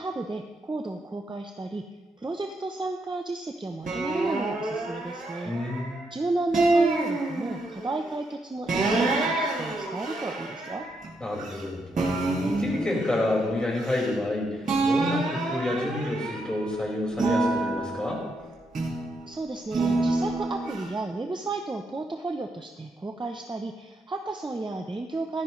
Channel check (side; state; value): both; normal; correlation 0.80